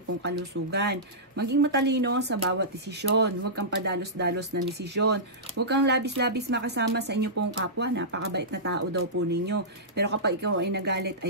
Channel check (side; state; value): both; normal; correlation -0.17